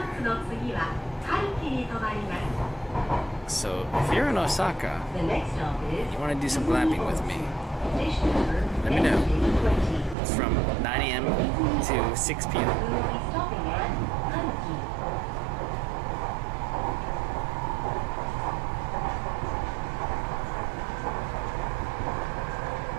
So if you're in Osaka, The next stop is you want to do some glamping with me, station number let me know. NK20. It's from 9 a.m. to 6 p.m. We will be stopping at Hanki.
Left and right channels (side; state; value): left; drops out; at 10.2 s